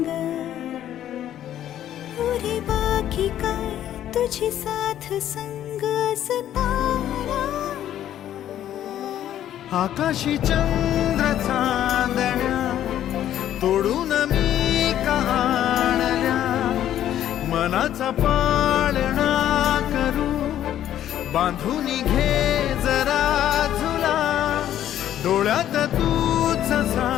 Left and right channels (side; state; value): right; quieter; 11.5 dB